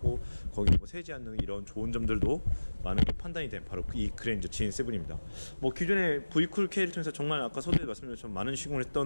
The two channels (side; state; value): both; inverted; correlation -1.00